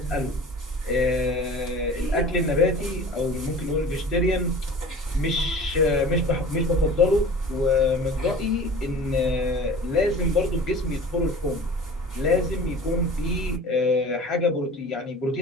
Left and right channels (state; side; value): normal; both; correlation 0.41